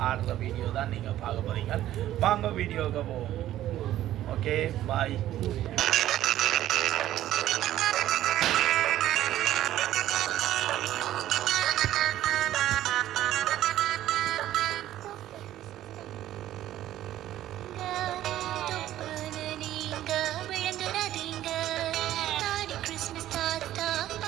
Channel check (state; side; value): quieter; left; 13.3 dB